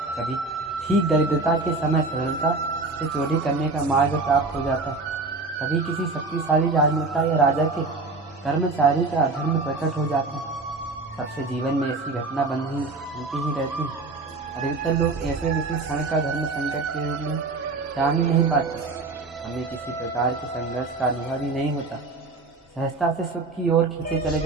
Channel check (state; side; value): quieter; left; 3.6 dB